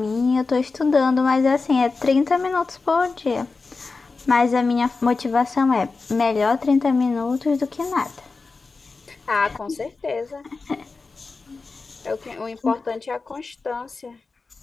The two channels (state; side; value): quieter; right; 4.1 dB